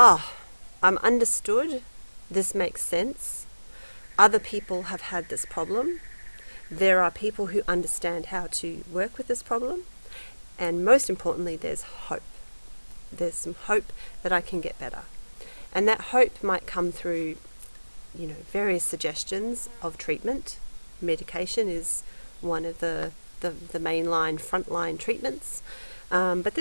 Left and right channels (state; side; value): inverted; both; correlation -1.00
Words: understood, this makes sense, other people have had this problem, there are people who understand how to work with this problem, and most importantly, there's hope. There's some hope that I can get better. And that hope might come through, various suggestions of treatment. Medication is one of the mainline, frontline treatments. But